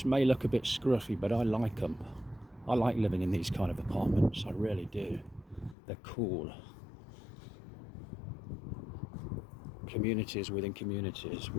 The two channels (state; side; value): drops out; right; at 5.8 s